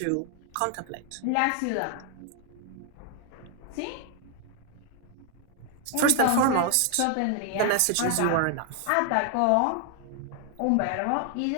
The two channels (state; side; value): different; both; correlation 0.00